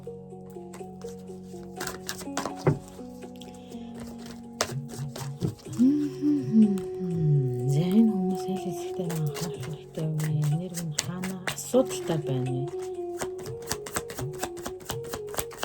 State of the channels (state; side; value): identical; both; correlation 1.00